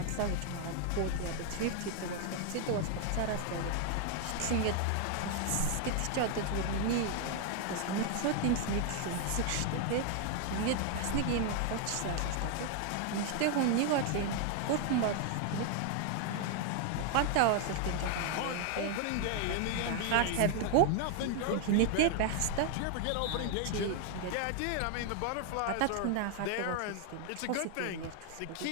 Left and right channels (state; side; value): different; both; correlation 0.00